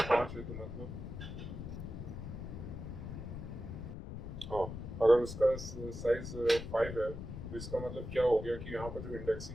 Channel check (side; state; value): left; noise; rumble, 8 dB below the sound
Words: 5 है तो मतलब, हाँ, अगर उसका साइज 5 है तो इसका मतलब क्या हो गया कि यहाँ पर जो